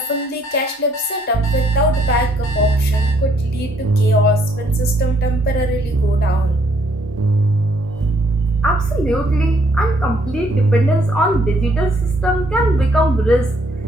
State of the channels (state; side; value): normal; both; correlation 0.68